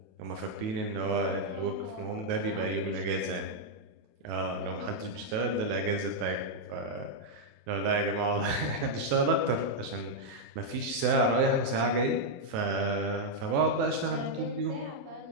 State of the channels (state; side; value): late; left; 27 ms